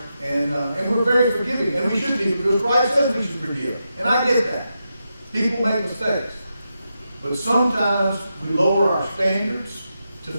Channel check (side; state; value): both; inverted; correlation -0.87